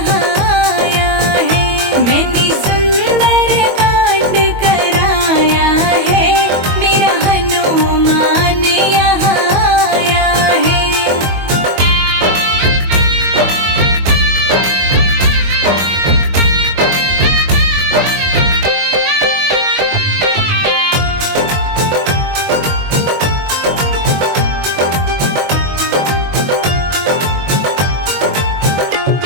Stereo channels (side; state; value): left; late; 22 ms